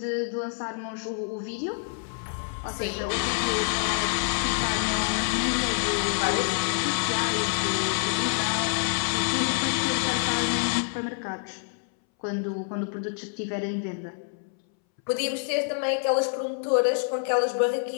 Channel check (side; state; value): right; silent; 60 dB below the other